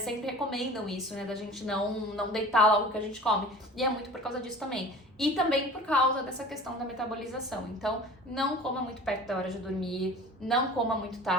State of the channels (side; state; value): both; normal; correlation 0.41